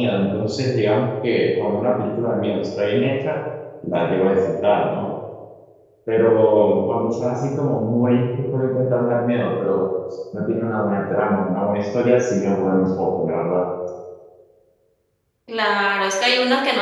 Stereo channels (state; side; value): identical; both; correlation 1.00